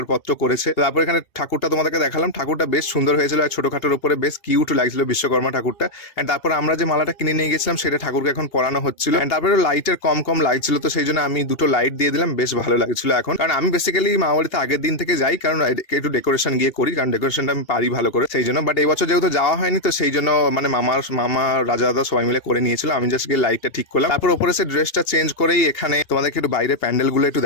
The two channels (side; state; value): right; late; 2.8 ms